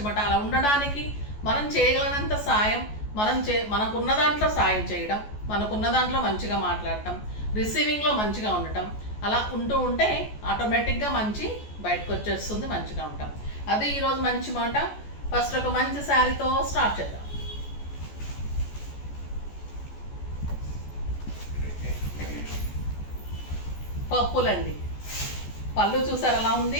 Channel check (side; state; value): right; late; 14 ms